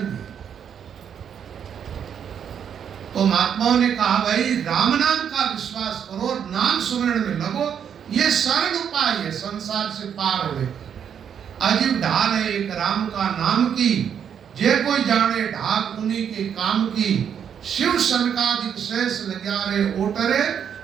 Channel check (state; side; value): quieter; left; 8.2 dB